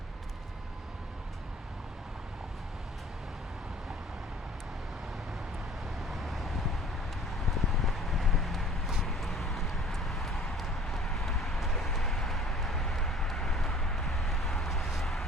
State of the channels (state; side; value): normal; both; correlation 0.49